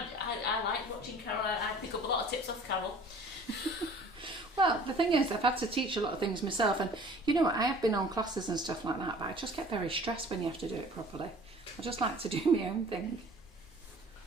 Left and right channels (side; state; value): both; normal; correlation 0.48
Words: like watching Carol. I pick up a lot of tips off Carol. Well, the thing is, I've had to teach a lot of things myself, and you know what, I have been on classes and stuff like that, but I just get very stressed when you have to do it properly. I just like to do my own thing.